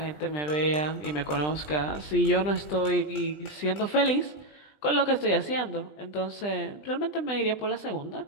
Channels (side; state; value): right; late; 20 ms